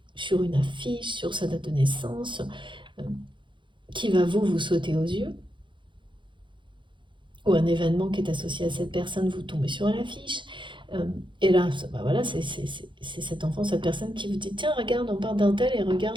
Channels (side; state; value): left; late; 0.23 ms